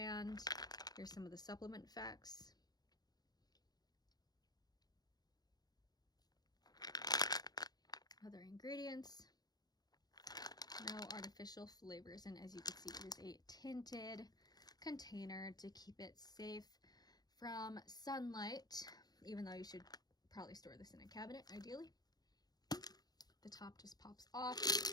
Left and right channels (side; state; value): right; late; 0.19 ms